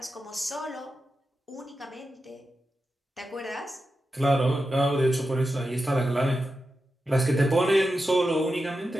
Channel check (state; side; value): normal; both; correlation 0.90